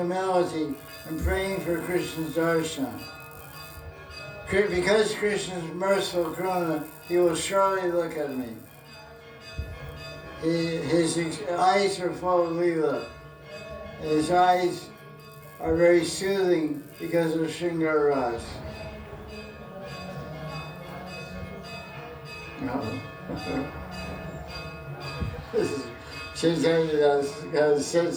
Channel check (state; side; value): identical; both; correlation 1.00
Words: and praying for Krishna's darshan. Because Krishna is merciful Karuna, he will surely look at me. His eyes are full of Leela. His eyes are very soothing because of Shringar Ras. No. Chaitanya has a